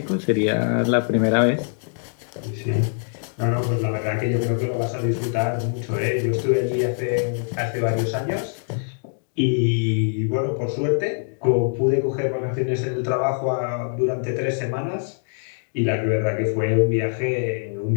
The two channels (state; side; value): silent; right; digital silence